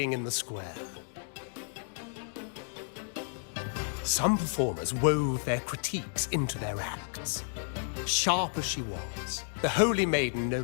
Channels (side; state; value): right; silent; 57 dB below the other